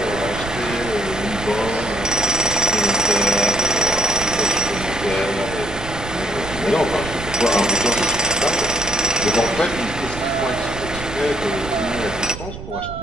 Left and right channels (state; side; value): noise; right; rumble, 11 dB below the sound